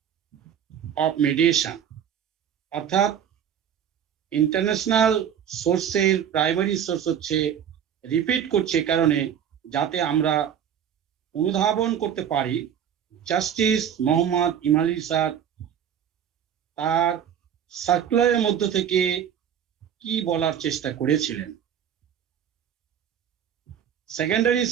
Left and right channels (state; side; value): quieter; left; 8.9 dB